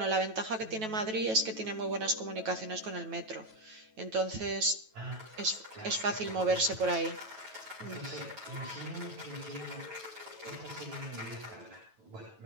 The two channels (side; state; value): left; late; 9.2 ms